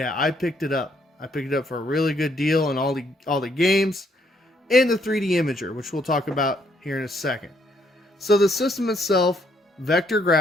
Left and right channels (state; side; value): normal; both; correlation 0.70